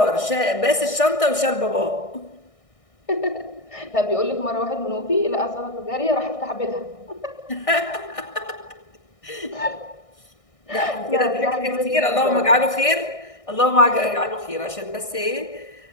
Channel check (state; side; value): late; right; 1.6 ms